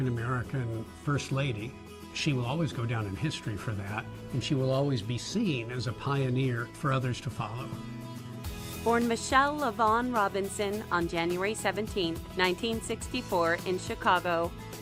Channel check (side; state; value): both; identical; correlation 1.00